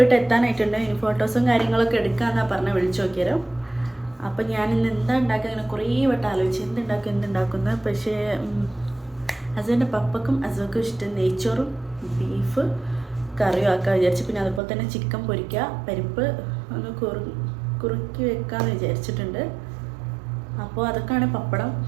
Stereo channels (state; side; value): drops out; left; at 14.6 s